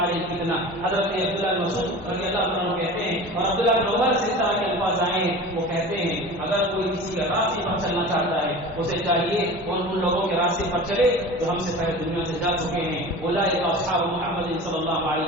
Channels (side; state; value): both; normal; correlation 0.36